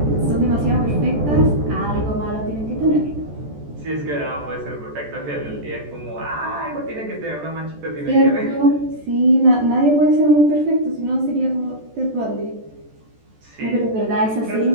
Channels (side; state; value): left; late; 14 ms